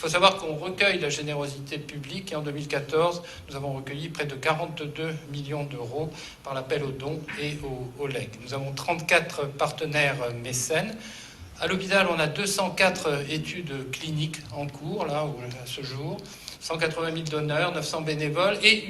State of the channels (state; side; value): identical; both; correlation 1.00